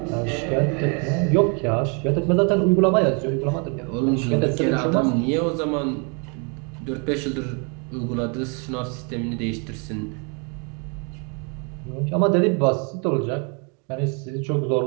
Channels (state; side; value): quieter; left; 35.7 dB